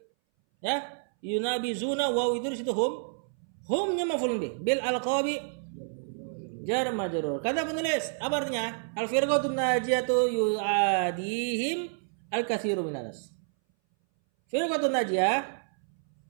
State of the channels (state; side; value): silent; left; 58 dB below the other